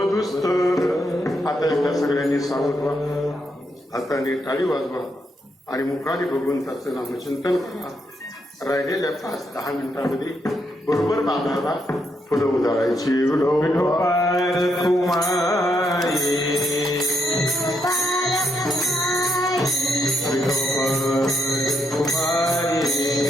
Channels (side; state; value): both; normal; correlation 0.78